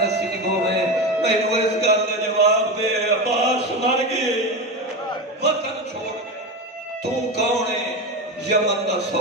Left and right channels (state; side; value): normal; both; correlation 0.20